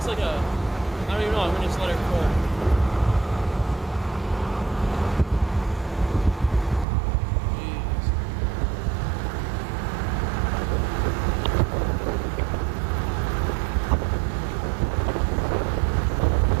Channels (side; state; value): left; drops out; at 6.9 s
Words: like a, I don't even know, I'm gonna just let her cook.